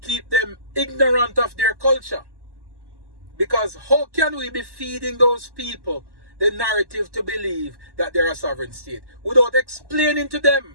keep them ignorant of their culture. Because how can we be feeding those people the narrative to believe that they're a sovereign state without explaining to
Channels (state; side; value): late; left; 1.1 ms